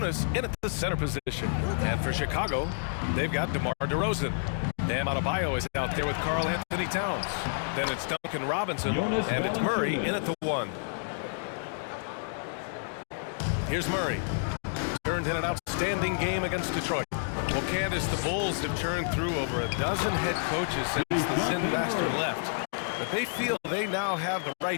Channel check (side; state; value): right; silent; digital silence